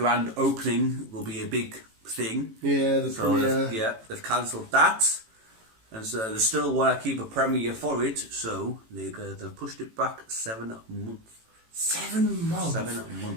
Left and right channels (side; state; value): left; late; 18 ms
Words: opening will be a big thing. Yeah, the premiere. They've cancelled that. And so they still want to keep a premiere for it, so they've pushed it back 7 months. 7 months. 7